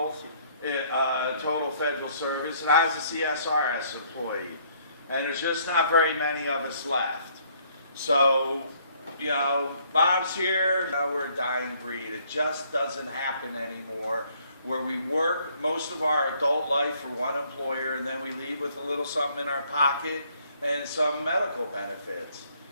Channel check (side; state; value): both; inverted; correlation -0.64